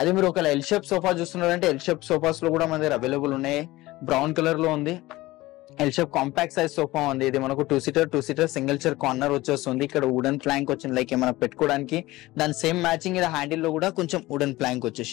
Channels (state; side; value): quieter; right; 18.8 dB